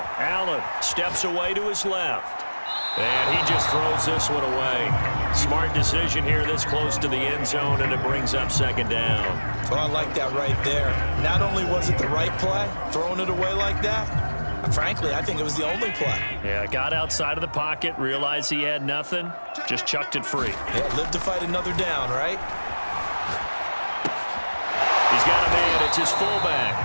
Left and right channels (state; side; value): inverted; both; correlation -1.00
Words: Allen steps away to his left. And he just throws this one away. Smart decision here this close to the end zone, and it brings up 2nd down. Well, I like that right there. Not only was it the right play, throwing it away like that, frankly, I think it was the only play. Yeah, got outside of the pocket, realized he had nothing, just chucked it free. Yeah, live to fight another down, right? He's got a man. It's his